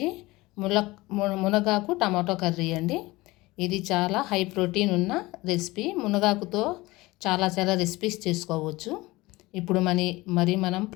మునగాకు టమాటో కర్రీ అండి. ఇది చాలా హై ప్రోటీన్ ఉన్న రెసిపీ. మునగాకుతో చాలా రెసిపీస్ చేసుకోవచ్చు. ఇప్పుడు మరి మనం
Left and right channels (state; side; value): quieter; right; 20.6 dB